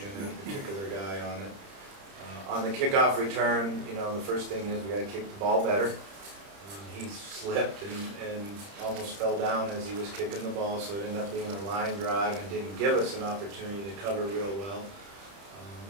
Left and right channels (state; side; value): late; left; 30 ms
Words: a particular guy on it. On the kickoff return, the first thing is we got to kick the ball better. He slipped and almost fell down as he was kicking the ball, so it ended up being a line drive and didn't give us an opportunity to cover real well.